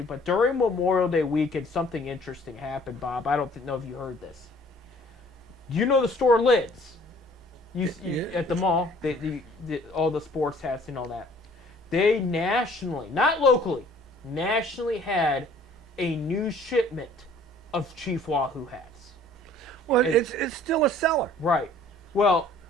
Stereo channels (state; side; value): normal; both; correlation 0.55